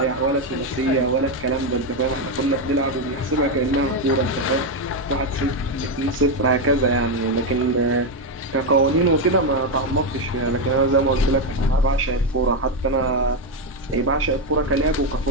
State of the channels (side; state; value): both; normal; correlation 0.06